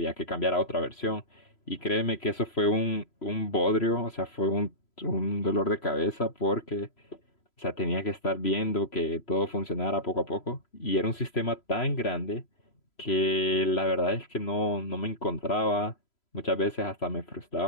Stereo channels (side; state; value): right; late; 3.0 ms